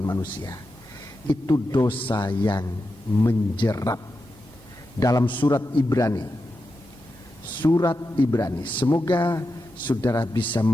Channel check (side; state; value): both; normal; correlation 0.89